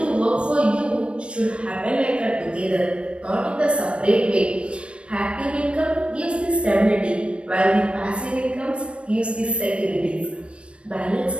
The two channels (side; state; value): left; late; 0.059 ms